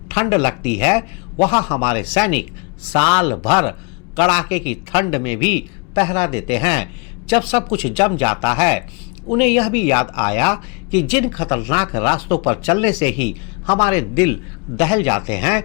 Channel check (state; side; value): quieter; right; 30.6 dB